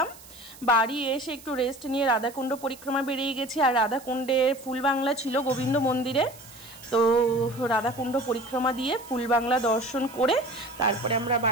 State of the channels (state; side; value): noise; right; hiss, 20 dB below the sound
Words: বাড়ি এসে একটু রেস্ট নিয়ে রাধাকুণ্ড পরিক্রমা বেরিয়ে গেছি। আর রাধাকুণ্ডের ফুলবাংলা ছিল গোবিন্দ মন্দিরে, তো রাধাকুণ্ড পরিক্রমা দিয়ে ফুলবাংলা দর্শন করে তারপরে আমরা